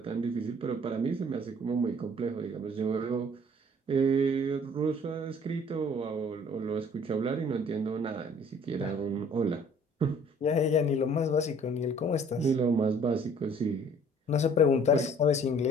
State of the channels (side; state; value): both; normal; correlation 0.54